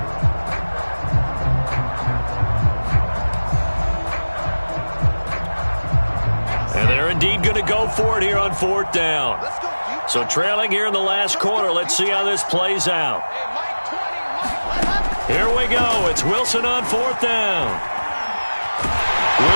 For it here on 4th down. So trailing here in the last quarter. Let's see how this plays out. Here we go. It's Wilson on 4th down.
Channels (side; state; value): both; inverted; correlation -1.00